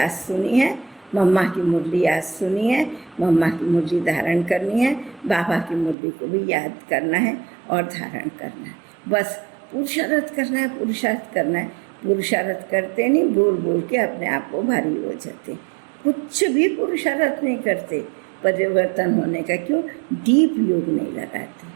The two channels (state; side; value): drops out; left; at 6.0 s